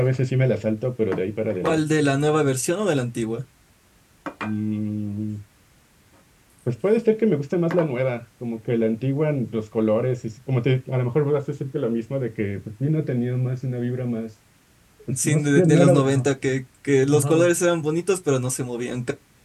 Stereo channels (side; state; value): both; identical; correlation 1.00